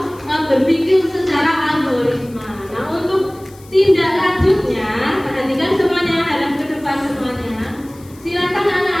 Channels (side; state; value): left; noise; hiss, 25 dB below the sound